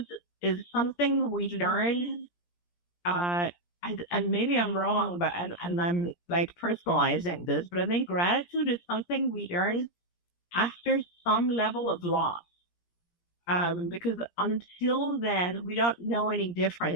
is something we learn, and maybe I'm wrong, but and I'm like personalizing this, but I think gratitude is something we learn after some level of loss. Because until then, we don't know any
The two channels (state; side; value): late; right; 17 ms